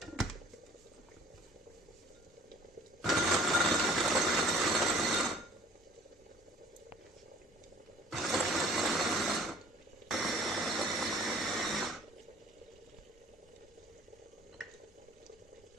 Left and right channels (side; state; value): both; normal; correlation 0.51